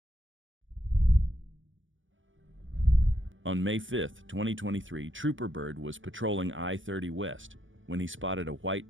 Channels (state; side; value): late; left; 0.57 ms